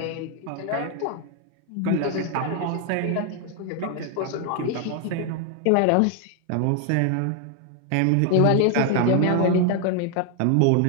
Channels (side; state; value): both; different; correlation 0.00